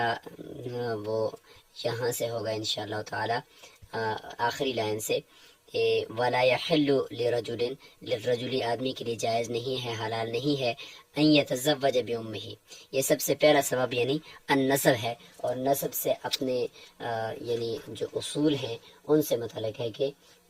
وہ یہاں سے ہوگا انشاءاللہ تعالی آخری لائن سے، وَلَا يَحِلُّ لِلرَّجُلِ آدمی کے لیے جائز نہیں ہے، حلال نہیں ہے ان يتزوج بأمه. یہ سب سے پہلا سبب یعنی النسب ہے، اور نسب سے اپنے یعنی جو اصول ہیں ان سے متعلق ہے کہ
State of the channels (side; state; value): both; identical; correlation 1.00